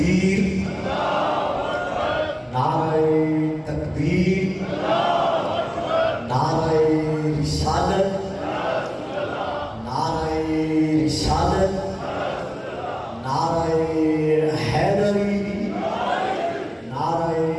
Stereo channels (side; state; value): both; identical; correlation 1.00